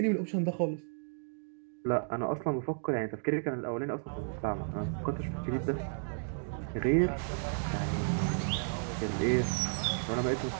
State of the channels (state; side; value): silent; left; digital silence